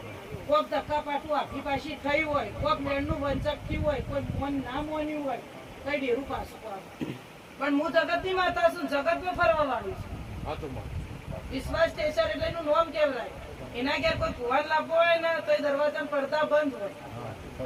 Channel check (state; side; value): identical; both; correlation 1.00